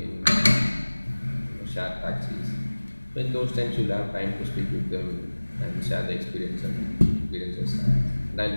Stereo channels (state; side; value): inverted; both; correlation -1.00